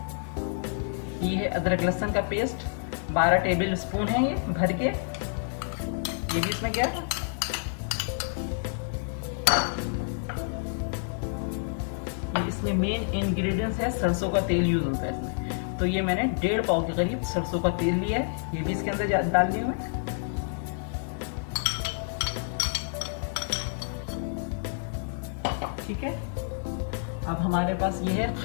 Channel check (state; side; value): silent; right; 55 dB below the other